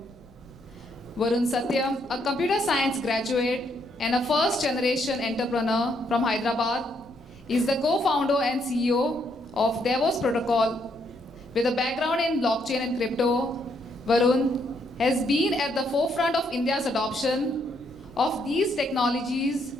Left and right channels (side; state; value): left; noise; rumble, 28 dB below the sound